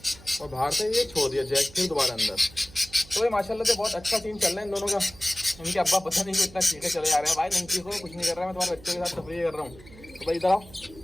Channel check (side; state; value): right; noise; hum, 21 dB below the sound